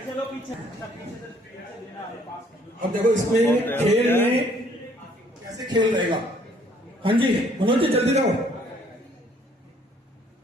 चलो पीछे। अब देखो इसमें खेल में कैसे खेल रहेगा। हाँ जी मनोज जी जल्दी जाओ,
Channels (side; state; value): both; normal; correlation 0.62